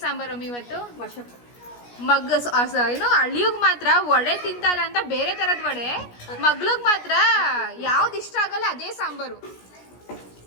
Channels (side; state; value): right; late; 17 ms